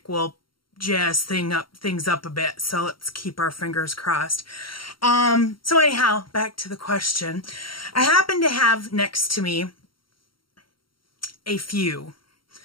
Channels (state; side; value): late; right; 0.73 ms